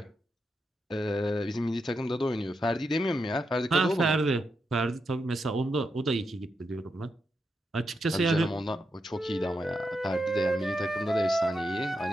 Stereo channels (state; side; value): normal; both; correlation 0.85